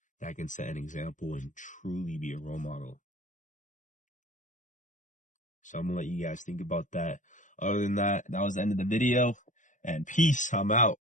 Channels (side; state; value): right; late; 0.37 ms